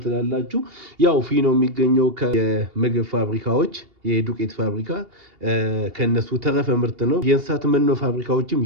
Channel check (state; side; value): late; left; 2.8 ms